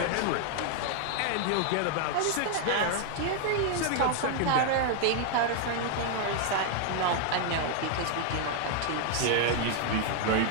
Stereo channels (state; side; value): different; both; correlation 0.00